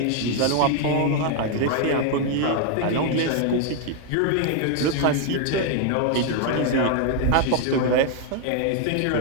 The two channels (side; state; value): both; different; correlation 0.00